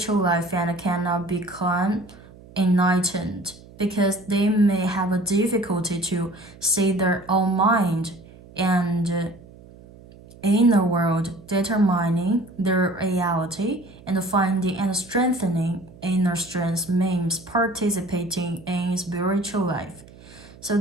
life and cannot become enlightened because they may have a difficulty to see their own mind and inner world, determining their reality and finding and strengthening inner strength means participating in spiritual life. So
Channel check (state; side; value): noise; right; hum, 21 dB below the sound